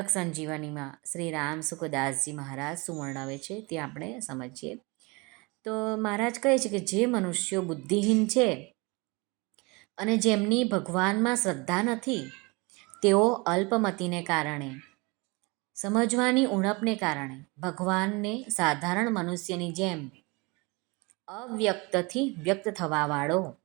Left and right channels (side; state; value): left; quieter; 26.9 dB